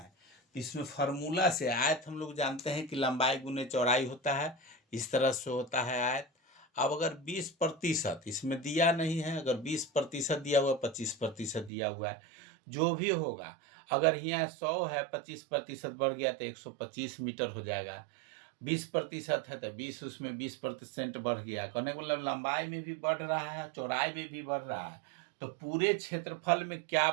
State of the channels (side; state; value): left; drops out; at 11.7 s